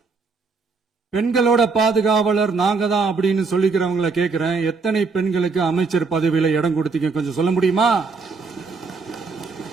பெண்களோட பாதுகாவலர் நாங்க தான் அப்படின்னு சொல்லிக்கிறவங்களை கேட்கிறேன், எத்தனை பெண்களுக்கு அமைச்சர் பதவியில இடம் கொடுத்தீங்க கொஞ்சம் சொல்ல முடியுமா?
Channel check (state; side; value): quieter; left; 4.4 dB